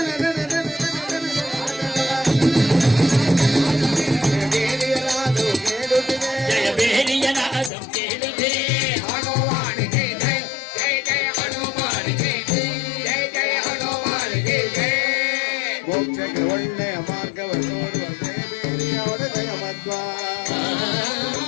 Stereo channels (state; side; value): drops out; right; at 7.7 s